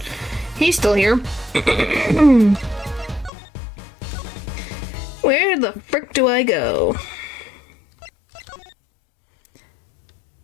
He's still here. Where the frick do I go?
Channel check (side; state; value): right; drops out; at 3.3 s